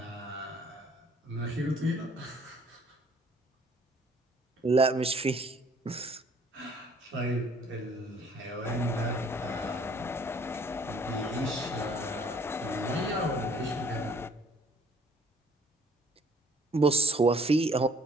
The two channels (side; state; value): both; normal; correlation 0.58